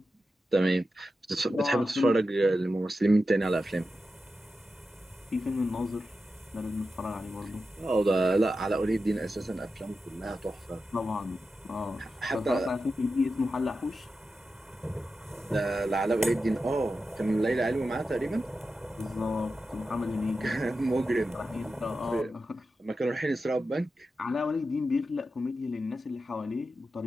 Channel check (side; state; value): both; normal; correlation 0.91